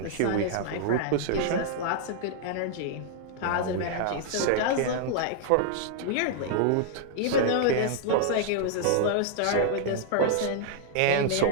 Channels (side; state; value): both; different; correlation -0.01